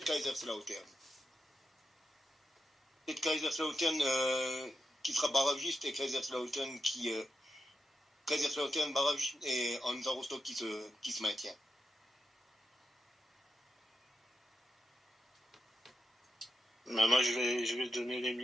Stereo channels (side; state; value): both; normal; correlation 0.87